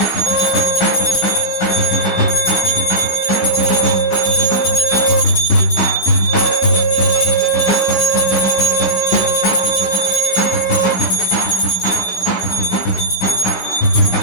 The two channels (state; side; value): late; right; 15 ms